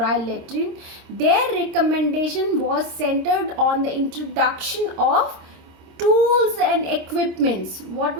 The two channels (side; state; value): left; late; 26 ms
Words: latrine, their recommendation was centered on the introduction of tools and equipments. What